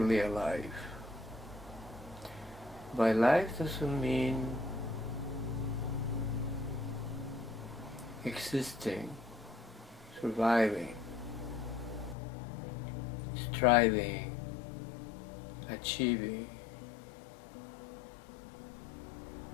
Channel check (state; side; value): drops out; right; at 12.2 s